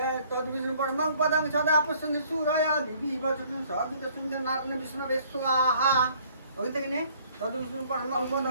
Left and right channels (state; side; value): inverted; both; correlation -0.59